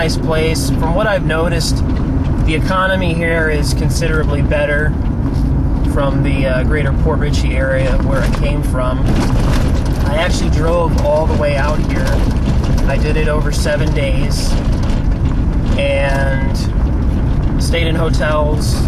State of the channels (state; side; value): identical; both; correlation 1.00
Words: place. From what I've noticed, the economy here is considerably better from the greater Port Richey area where I came from. I actually drove all the way out here. I did it over 7 days and stayed in